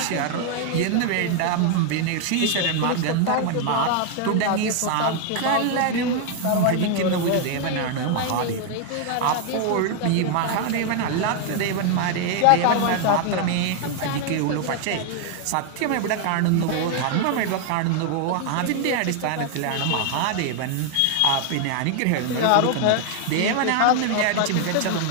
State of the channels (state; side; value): different; both; correlation 0.00